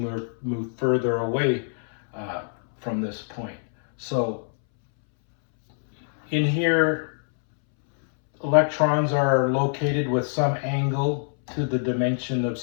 move further away from this point. So In here, electrons are located with some angle to the dimension of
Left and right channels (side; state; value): right; silent; 62 dB below the other